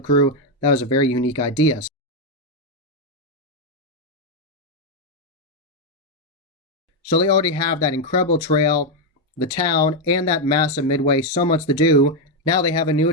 crew. That was a very unique idea. So they already have that incredible trail, the town, and that massive Midway. So much to do. Now they have a new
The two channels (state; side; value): normal; both; correlation 0.03